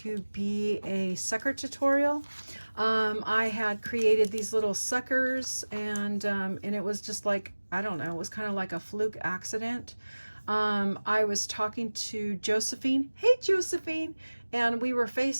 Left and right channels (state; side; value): inverted; both; correlation -1.00